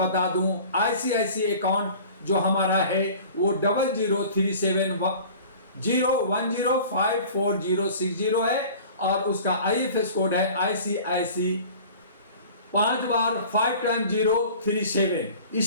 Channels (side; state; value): both; inverted; correlation -0.43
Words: दूं, आईसीआईसी अकाउंट जो हमारा है वो 003710105460 है और उसका आईएफएस कोड है आईसीआईसी 5 बार 5 टाइम 037।